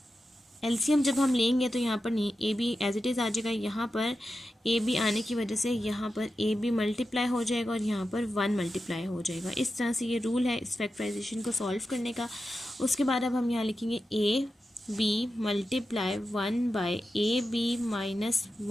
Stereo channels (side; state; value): both; normal; correlation 0.91